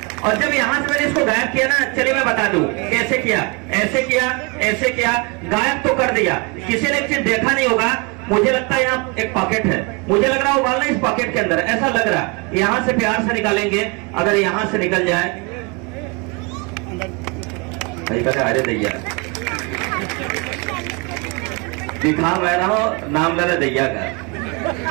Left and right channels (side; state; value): left; quieter; 29.8 dB